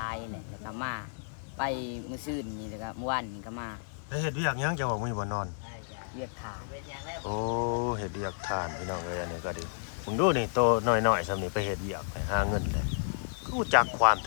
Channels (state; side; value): silent; right; digital silence